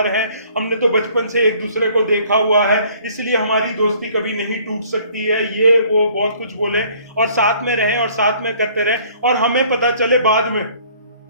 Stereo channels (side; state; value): both; inverted; correlation -0.57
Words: हैं, हमने तो बचपन से एक दूसरे को देखा हुआ है, इसलिए हमारी दोस्ती कभी नहीं टूट सकती है, ये वो बहुत कुछ बोले और साथ में रहें और साथ में करते रहें, और हमें पता चले बाद में,